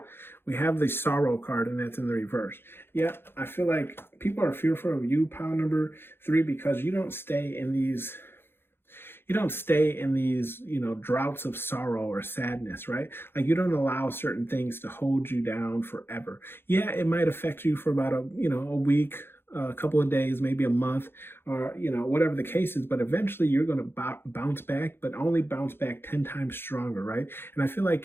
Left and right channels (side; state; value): right; late; 0.11 ms